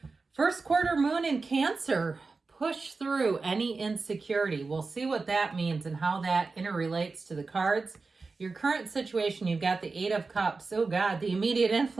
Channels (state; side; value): quieter; left; 4.1 dB